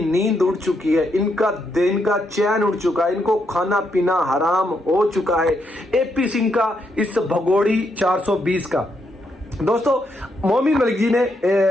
नींद उड़ चुकी है, इनका दिन का चैन उड़ चुका है, इनको खाना पीना हराम हो चुका है। एपी सिंह का इस भगोड़ी 420 का। दोस्तों, मोमिन मलिक जी ने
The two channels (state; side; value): normal; both; correlation 0.78